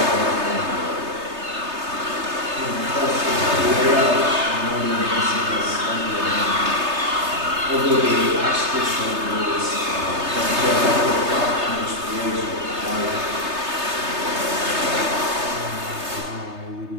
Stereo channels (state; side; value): late; left; 3.3 ms